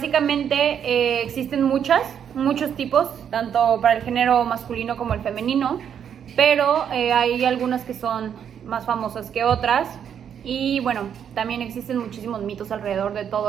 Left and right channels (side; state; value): left; quieter; 8.4 dB